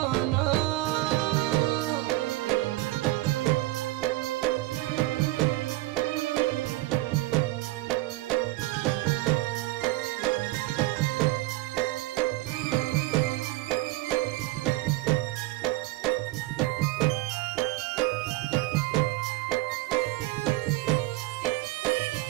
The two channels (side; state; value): left; quieter; 18.8 dB